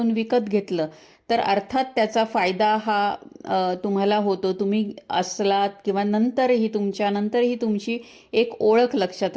विकत घेतलं तर अर्थात त्याचा फायदा हा तुम्हाला होतो. तुम्ही असलात किंवा नंतरही तुमची एक ओळख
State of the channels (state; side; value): identical; both; correlation 1.00